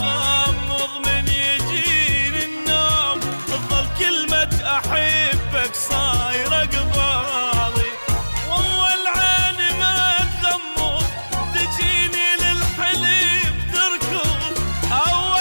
من يجيني النوم تظل كلمة احبك صايرة قبالي. واول عين ما تغمض تجيني للحليم تركض.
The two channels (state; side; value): inverted; both; correlation -1.00